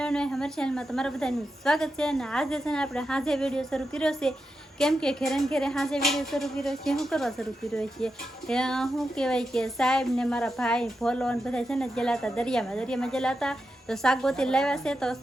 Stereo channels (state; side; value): normal; both; correlation 0.88